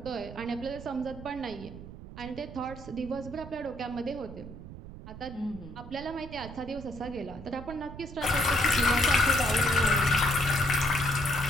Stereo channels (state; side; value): noise; right; rumble, 13 dB below the sound